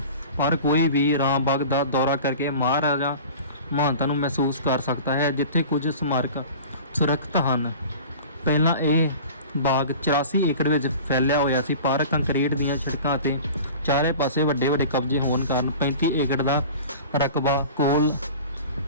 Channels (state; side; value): inverted; both; correlation -0.39